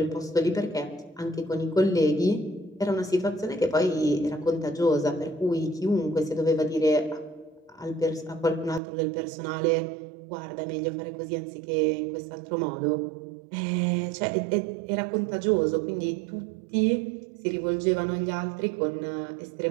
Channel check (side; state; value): left; drops out; at 8.8 s